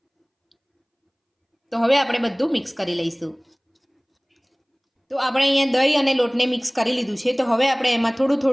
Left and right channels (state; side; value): identical; both; correlation 1.00